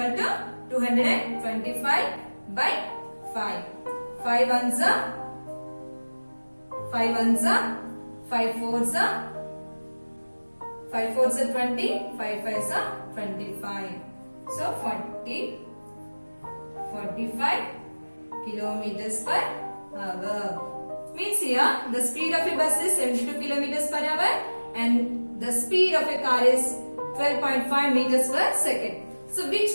to 225 by 5. 5 ones are 5 ones are 5 fours are 5 fours are 20, 5 fives are 25. So 45 kilometers per hour. Means here the speed of a bus is 72 kilometers per hour and the speed of a car is 12.5 meters per second. So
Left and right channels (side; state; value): both; inverted; correlation -1.00